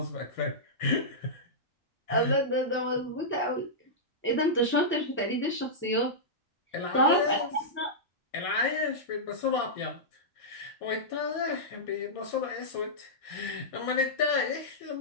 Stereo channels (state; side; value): normal; both; correlation -0.12